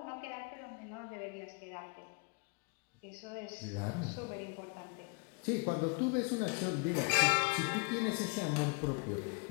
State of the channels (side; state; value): right; quieter; 32.4 dB